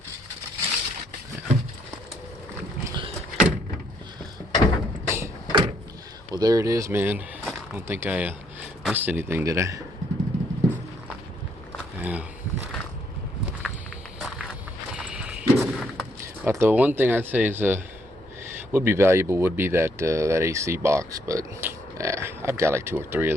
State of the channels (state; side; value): normal; both; correlation 0.71